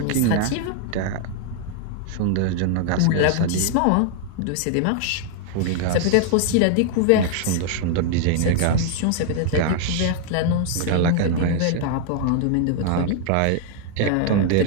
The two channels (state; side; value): different; both; correlation 0.00